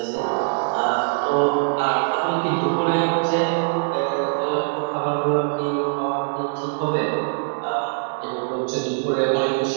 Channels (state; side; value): silent; left; digital silence